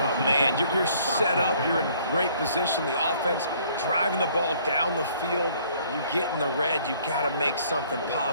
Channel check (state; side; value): inverted; both; correlation -0.60